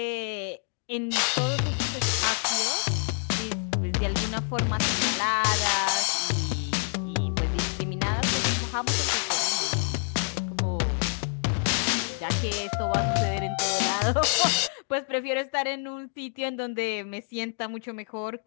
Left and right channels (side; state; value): right; silent; 56 dB below the other